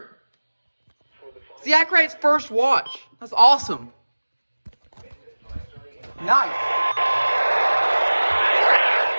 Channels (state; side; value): inverted; both; correlation -1.00